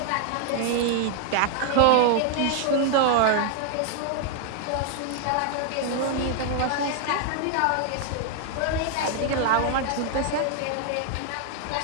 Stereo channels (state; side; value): different; both; correlation 0.00